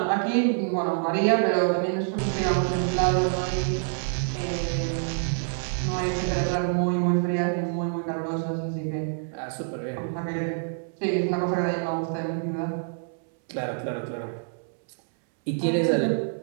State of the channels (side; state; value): left; silent; 61 dB below the other